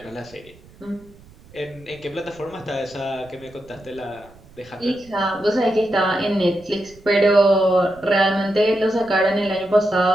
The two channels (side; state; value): right; noise; rumble, 24 dB below the sound